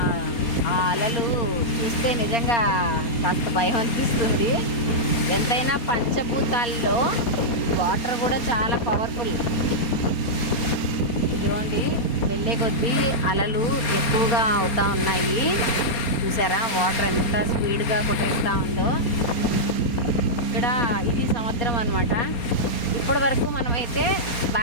ఆ అలలు చూస్తే నిజంగా కాస్త భయం అనిపిస్తుంది. ఎంతైనా పంచభూతాల్లో వాటర్ కూడా చాలా పవర్ఫుల్. చూడండి, వెళ్ళే కొద్దీ అలలు ఎక్కువగా అవుతూ ఉన్నాయి. చూసారా వాటర్ ఎంత స్పీడ్గా కొట్టేస్తూ ఉందో. ఇక్కడ ఇది సముద్రం అనమాట. ఇప్పటి వరకు మనమైతే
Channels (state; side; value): late; right; 4.3 ms